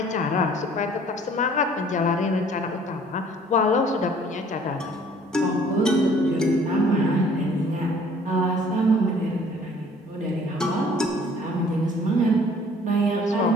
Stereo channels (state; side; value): normal; both; correlation 0.55